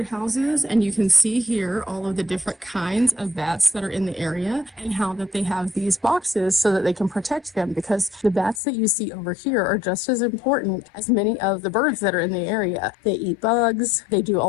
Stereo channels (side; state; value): right; drops out; at 8.6 s